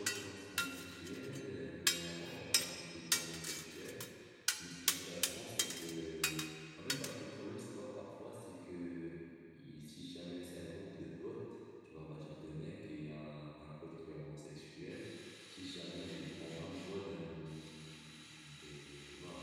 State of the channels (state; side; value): identical; both; correlation 1.00